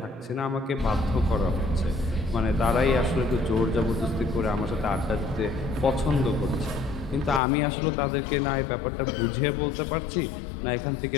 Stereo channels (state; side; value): drops out; right; at 7.4 s